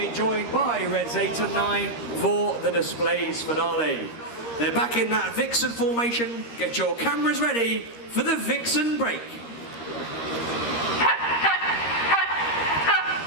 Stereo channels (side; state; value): right; late; 13 ms